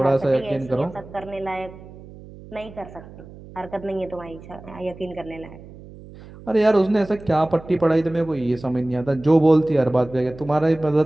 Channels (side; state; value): right; noise; hum, 18 dB below the sound